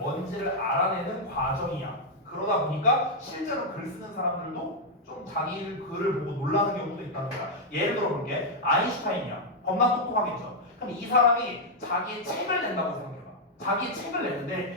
알아내는 과정이야. 그러다 보니까 실제로 글 쓰는 사람들도 좀 자기 글을 보고 놀라는 경우도 있다는 거야. 예를 들어 볼게. 아인슈타인이야. 겁나 똑똑하겠죠. 그럼 이 사람이 자기의 책을 낸다고 생각해봐. 자기의 책을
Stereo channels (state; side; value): normal; both; correlation -0.02